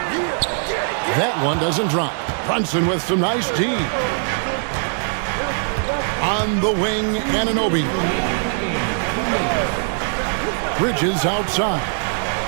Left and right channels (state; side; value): silent; left; 57 dB below the other